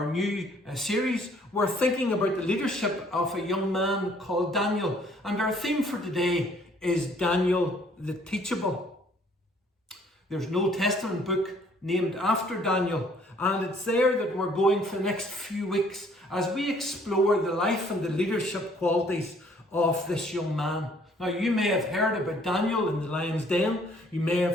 new series, we're thinking about the leadership of a young man called Daniel, and our theme for today is Daniel the Teachable. There's an Old Testament book named after Daniel, and it's there that we're going for the next few weeks as we explore the life and the leadership qualities of this young man. Now, you may have heard about Daniel in the lion's den. You may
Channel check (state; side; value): normal; both; correlation 0.61